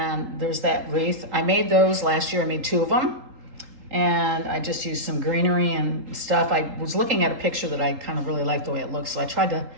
there's that wreath. I made those last year. I made 2 of them. And I just used some greenery and stuff. I was looking at a picture that I kind of really liked the way it looks, so I tried to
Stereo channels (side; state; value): left; late; 3.8 ms